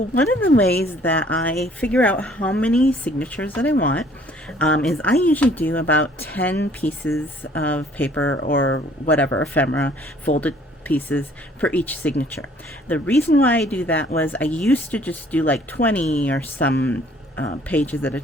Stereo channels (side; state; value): both; normal; correlation 0.58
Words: of the ways that I figure out how many signatures that I want is I usually do about 10 pieces of paper or whatever, ephemera, folded pieces for each signature. The reason why I do that was I used to just do like 20 or some pages at a